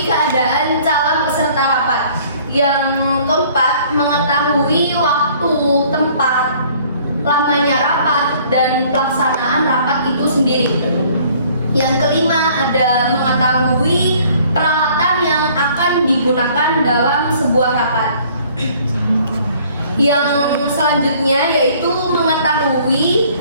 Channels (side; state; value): both; inverted; correlation -0.56